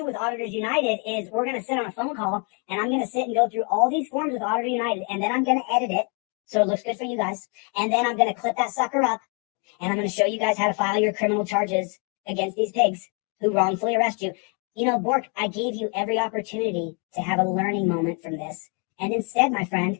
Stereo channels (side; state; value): right; quieter; 36.5 dB